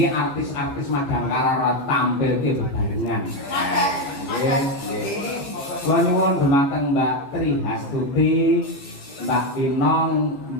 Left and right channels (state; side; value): late; right; 15 ms